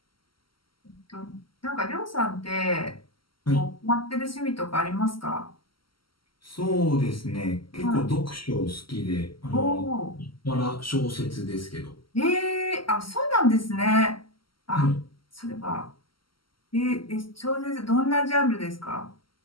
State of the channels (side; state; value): right; late; 0.74 ms